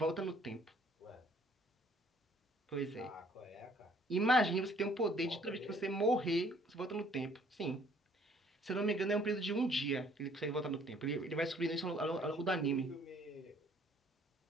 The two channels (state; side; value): normal; both; correlation 0.60